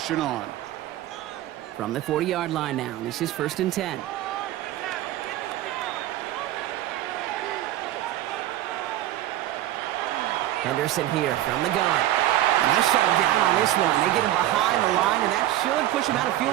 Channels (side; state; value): left; quieter; 14.0 dB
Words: on. From the 40-yard line now, this is 1st and 10. Henderson here from the gun. And they shut him down on this one. They get him behind the line, and that should push him out of